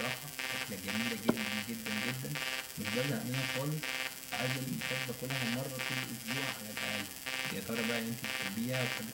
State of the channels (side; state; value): both; identical; correlation 1.00